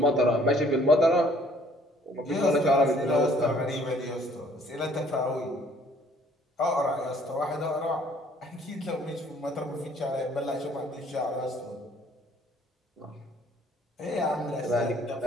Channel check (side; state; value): both; normal; correlation 0.60